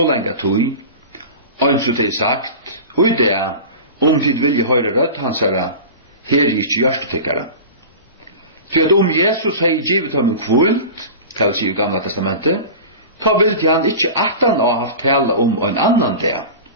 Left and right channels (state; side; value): inverted; both; correlation -0.33